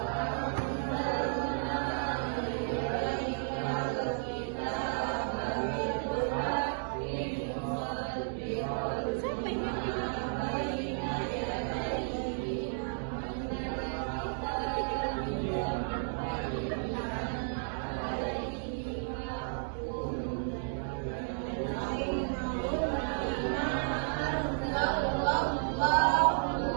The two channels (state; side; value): silent; left; digital silence